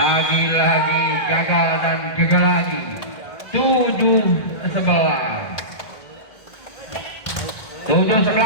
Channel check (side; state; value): right; late; 1.7 ms